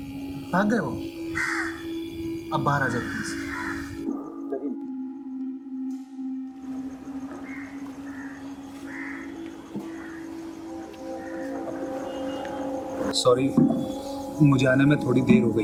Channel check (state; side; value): identical; both; correlation 1.00